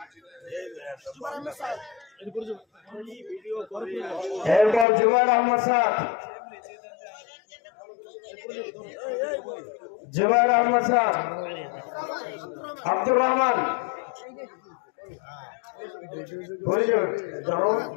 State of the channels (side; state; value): right; drops out; at 4.9 s